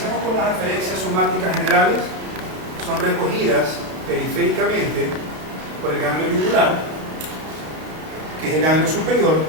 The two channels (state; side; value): late; left; 32 ms